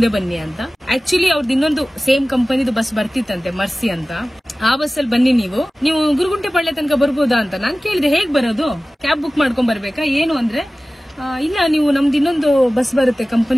ಬನ್ನಿ ಅಂತ. ಆಕ್ಚುಲಿ ಅವ್ರದ್ದು ಇನ್ನೊಂದು ಸೇಮ್ ಕಂಪನಿದು ಬಸ್ ಬರ್ತಿತ್ತಂತೆ, ಮರ್ಸಿ ಅಂತ. ಆ ಬಸ್ಸಲ್ಲಿ ಬನ್ನಿ ನೀವು ಗುರುಗುಂಟೆ ಪಾಳ್ಯ ತನಕ ಬರ್ಬೋದಾ ಅಂತ ನಾನು ಕೇಳಿದೆ. ಹೇಗ್ ಬರೋದು, ಕ್ಯಾಬ್ ಬುಕ್ ಮಾಡ್ಕೊಂಡ್ ಬರ್ಬೇಕಾ ಏನು ಅಂದ್ರೆ, ಇಲ್ಲ ನೀವು ನಮ್ದು ಇನ್ನೊಂದು ಬಸ್ ಬರುತ್ತೆ,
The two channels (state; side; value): normal; both; correlation 0.97